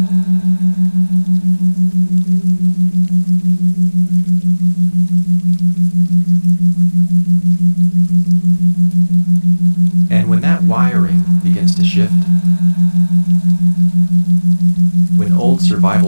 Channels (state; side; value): inverted; both; correlation -1.00